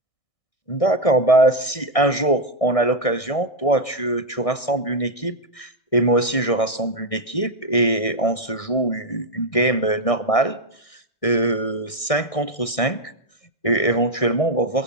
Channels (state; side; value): late; right; 1.6 ms